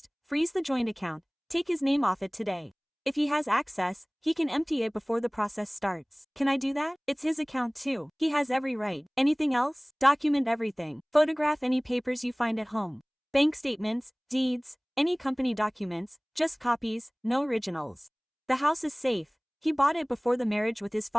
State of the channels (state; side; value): identical; both; correlation 1.00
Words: freeze the joint account, take his name off it today. If he has access, he can empty it before the process starts. Can I do that? It's his account too. He has every right. Anything else? Document everything. Photograph any papers you find at home. Bank statements, deeds, any company documents, just copies, no originals. The house is safe. He bought it before the marriage with his